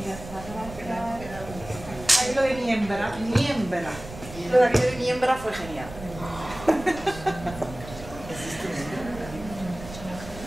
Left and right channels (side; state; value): right; noise; rumble, 14 dB below the sound